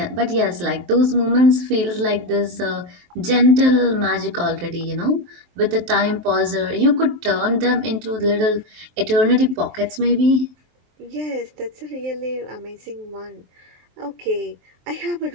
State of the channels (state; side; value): late; left; 23 ms